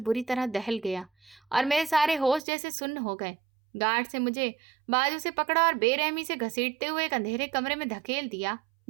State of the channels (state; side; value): drops out; left; at 2.4 s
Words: तरह दहल गया और मेरे सारे होश जैसे सुन्न हो गए। गार्ड से मुझे बाजू से पकड़ा और बेरहमी से घसीटते हुए एक अंधेरे कमरे में धकेल दिया,